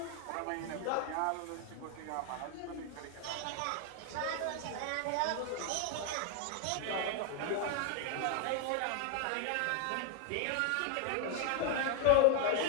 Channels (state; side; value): different; both; correlation 0.00